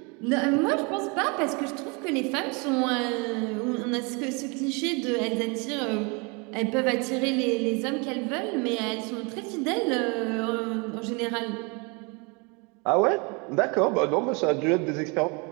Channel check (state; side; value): quieter; left; 31.0 dB